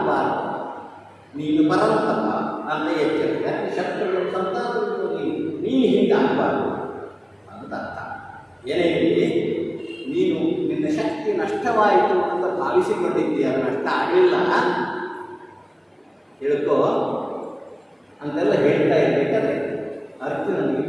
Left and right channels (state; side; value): identical; both; correlation 1.00